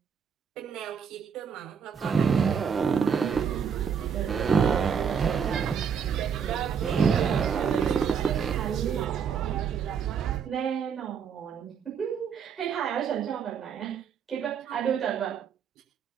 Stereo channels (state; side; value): quieter; left; 6.8 dB